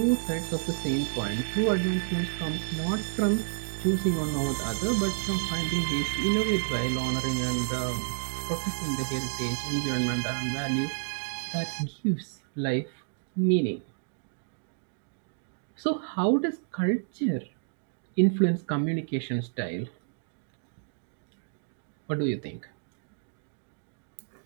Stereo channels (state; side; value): silent; left; digital silence